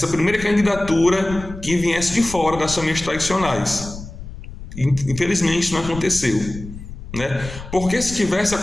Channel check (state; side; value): noise; left; rumble, 12 dB below the sound